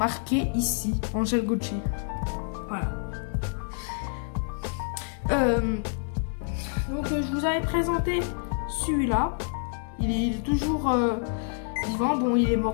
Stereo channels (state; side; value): silent; right; digital silence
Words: ici. Angel Gotchi. Voilà. Donc je vous avais présenté celui-là. Il est toujours vivant. Bon, il est